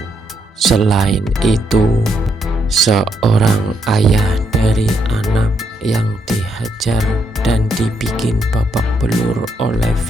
Selain itu, seorang ayah dari anak yang dihajar dan dibikin babak belur oleh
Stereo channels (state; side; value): normal; both; correlation 0.77